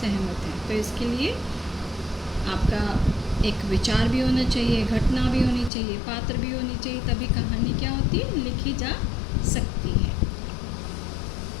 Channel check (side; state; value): right; drops out; at 5.7 s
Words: हैं। तो इसके लिए आपका एक विचार भी होना चाहिए, घटना भी होनी चाहिए, पात्र भी होनी चाहिए, तभी कहानी क्या होती है, लिखी जा सकती है।